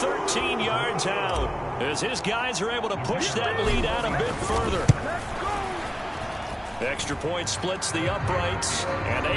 yards out as his guys are able to push that lead out a bit further. Extra point splits the uprights, and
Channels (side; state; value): both; identical; correlation 1.00